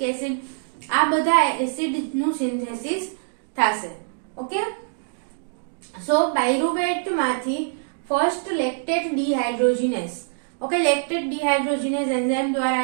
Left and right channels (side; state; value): left; silent; digital silence